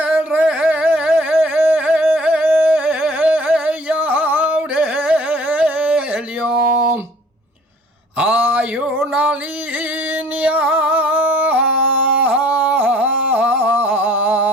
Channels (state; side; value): normal; both; correlation 0.54